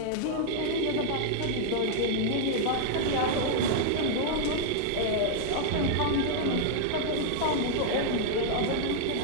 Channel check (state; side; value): different; both; correlation -0.01